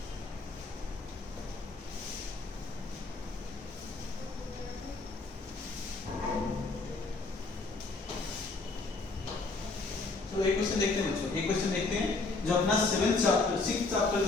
तो एक क्वेश्चन देखते हैं बच्चों, एक क्वेश्चन देखते हैं जो अपना 7th चैप्टर 6th चैप्टर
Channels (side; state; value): right; quieter; 3.7 dB